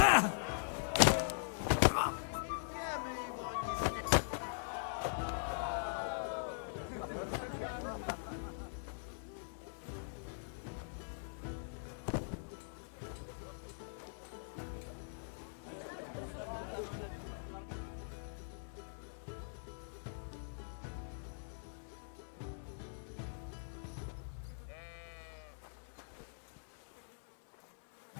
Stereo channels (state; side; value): silent; right; digital silence